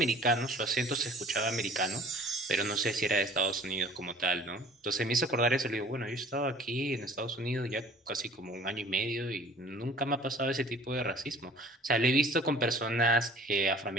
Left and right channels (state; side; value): normal; both; correlation 0.49